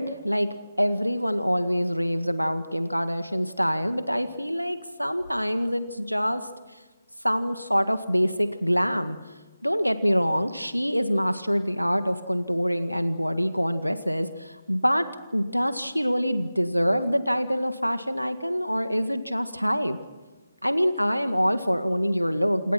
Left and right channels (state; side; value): inverted; both; correlation -0.98